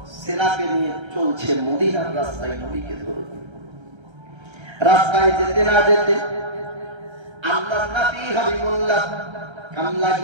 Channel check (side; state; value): left; late; 1.3 ms